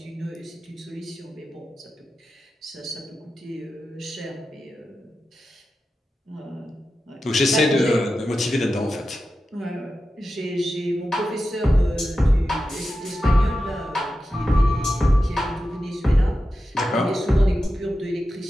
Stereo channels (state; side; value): normal; both; correlation 0.92